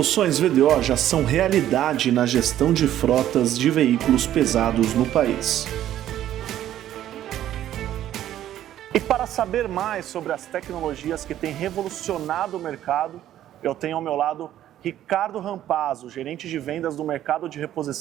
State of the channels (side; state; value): left; quieter; 12.1 dB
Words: VDO já são realidade na gestão de frotas de veículos pesados no país. E para saber mais sobre as tecnologias que têm revolucionado o mercado, eu tenho ao meu lado Ricardo Rampazzo, gerente de vendas do mercado de